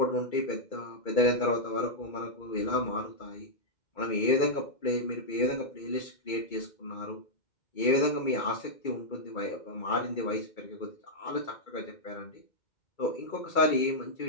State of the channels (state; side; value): late; right; 2.3 ms